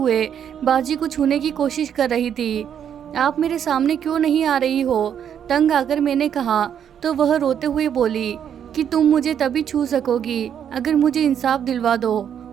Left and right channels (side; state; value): left; quieter; 8.8 dB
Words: बाजी को छूने की कोशिश कर रही थी। आप मेरे सामने क्यों नहीं आ रही हो? तंग आकर मैंने कहा, तो वह रोते हुए बोली कि तुम मुझे तभी छू सकोगी अगर मुझे इंसाफ दिलवा दो,